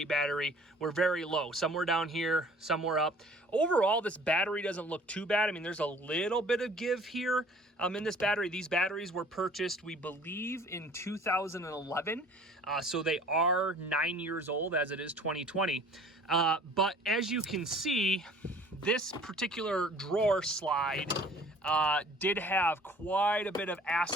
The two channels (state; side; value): normal; both; correlation 0.51